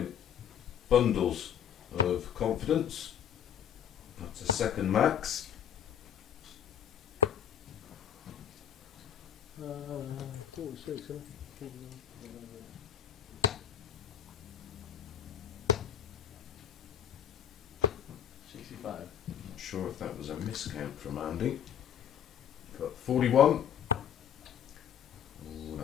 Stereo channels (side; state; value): right; quieter; 9.2 dB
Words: bundles of confidence. That's a second max. 46. 65. Not sure if that was a miscount from Andy. But 41. Oh,